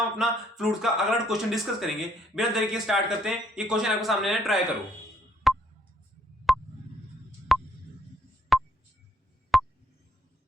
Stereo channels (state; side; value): normal; both; correlation 0.69